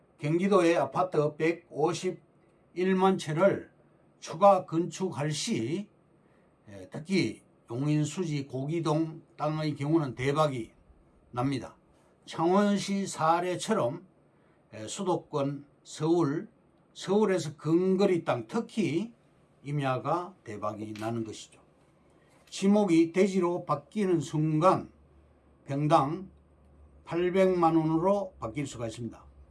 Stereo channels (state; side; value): identical; both; correlation 1.00